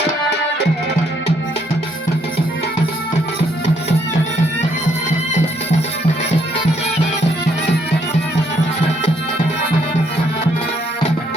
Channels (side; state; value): both; normal; correlation 0.70